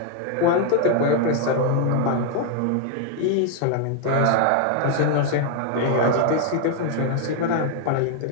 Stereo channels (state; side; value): different; both; correlation 0.00